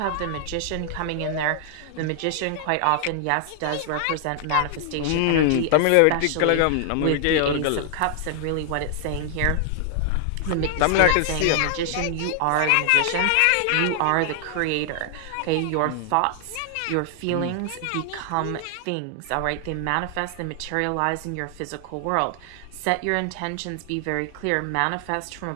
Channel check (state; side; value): different; both; correlation 0.00